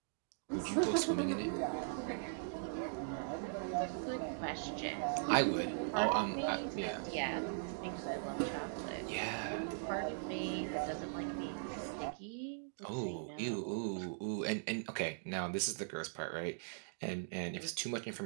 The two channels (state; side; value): silent; left; digital silence